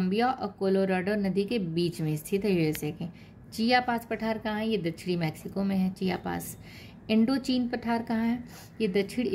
और कोलोराडो नदी के बीच में स्थित है, यूएसए के। चियापास पठार कहाँ है, ये दक्षिणी मैक्सिको में है चियापास। इंडो चीन पठार कहाँ है, ये दक्षिण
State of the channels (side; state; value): both; identical; correlation 1.00